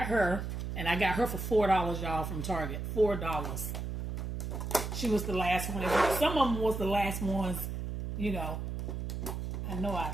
her. And I got her for $4, y'all, from Target. $4. She was the last one. Some of them was the last ones, you know. I know I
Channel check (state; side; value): noise; right; hum, 4 dB below the sound